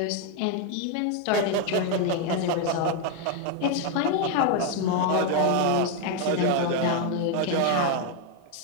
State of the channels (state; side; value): different; both; correlation 0.01